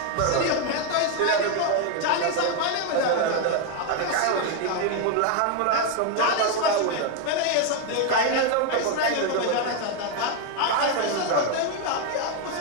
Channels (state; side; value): different; both; correlation 0.01